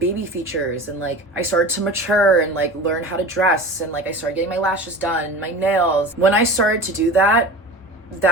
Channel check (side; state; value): both; normal; correlation 0.35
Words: features and like I started to mature and like learn how to dress and like I started getting my lashes done, my nails. When I started to do that,